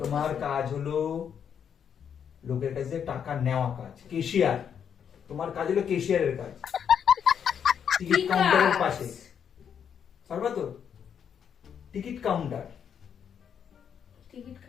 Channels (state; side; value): quieter; right; 7.9 dB